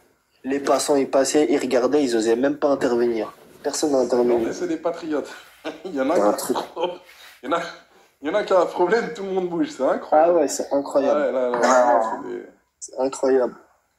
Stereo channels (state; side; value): identical; both; correlation 1.00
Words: Les passants, ils passaient, ils regardaient, ils osaient même pas intervenir. Personne n'a intervenu. C'est des patriotes. Il y en a C'est un qui truc. il y en a qui a un problème, tout le monde bouge, c'est Ah incroyable. ouais, c'est incroyable. Ouais, là, c'est des... C'est incroyable.